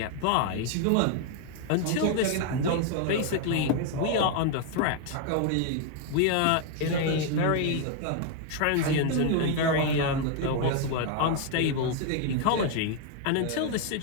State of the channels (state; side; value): different; both; correlation 0.00